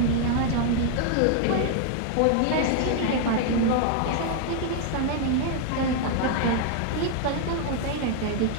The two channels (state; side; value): different; both; correlation 0.00